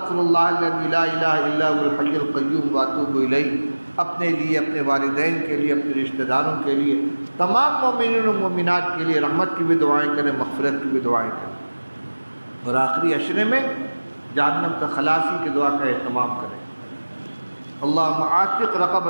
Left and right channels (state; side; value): inverted; both; correlation -1.00